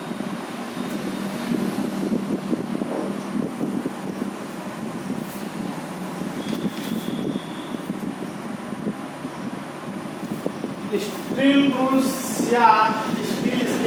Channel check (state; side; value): identical; both; correlation 1.00